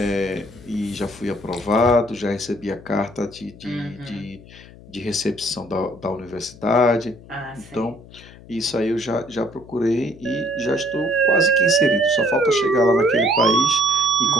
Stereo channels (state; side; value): noise; left; hum, 20 dB below the sound